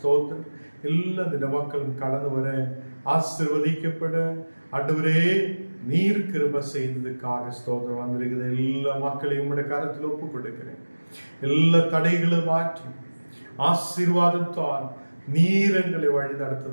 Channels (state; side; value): inverted; both; correlation -1.00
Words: எல்லா தின மக்களும் கடந்து வர ஆசீர்வதிக்கப்பட ஆண்டவரே நீர் கிருபை செய்ததுக்காக ஸ்தோத்திரம். வந்திருக்கிற எல்லா மக்களையும் உம்முடைய கரத்தில் ஒப்புக் கொடுக்கிறேன். எல்லா தடைகளும் மாற்றி ஆசீர்வாதத்தால் நீர் எங்களை வழி